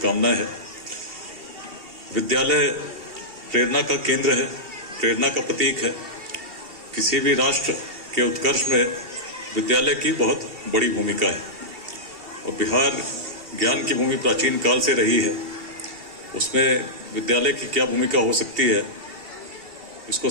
है। विद्यालय प्रेरणा का केंद्र है, प्रेरणा का प्रतीक है। किसी भी राष्ट्र के उत्कर्ष में विद्यालय की बहुत बड़ी भूमिका है और बिहार ज्ञान की भूमि प्राचीन काल से रही है। उसमें विद्यालय की क्या भूमिका हो सकती है इसको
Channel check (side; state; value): left; late; 2.7 ms